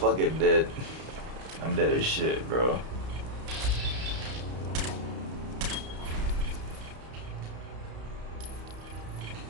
dead. I'm dead as shit, bro.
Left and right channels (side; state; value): left; late; 32 ms